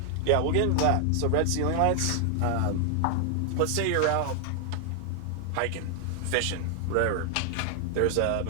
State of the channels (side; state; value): both; different; correlation 0.00